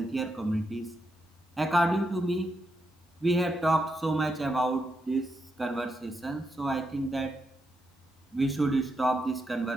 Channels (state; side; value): normal; both; correlation 0.83